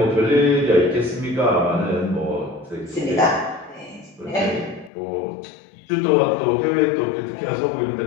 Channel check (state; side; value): drops out; right; at 4.9 s